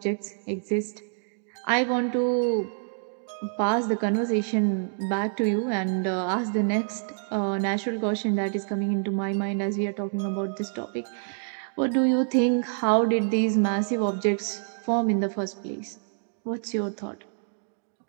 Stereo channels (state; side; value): silent; left; digital silence